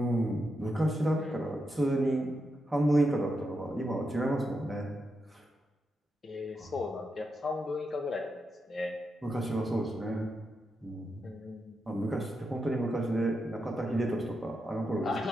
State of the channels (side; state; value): both; normal; correlation 0.85